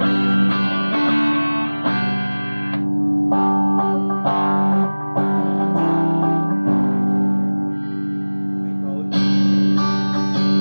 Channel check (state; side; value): inverted; both; correlation -1.00